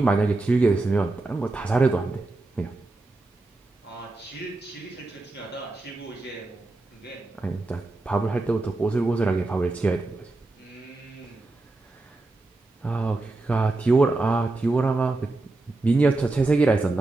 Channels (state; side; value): quieter; left; 3.1 dB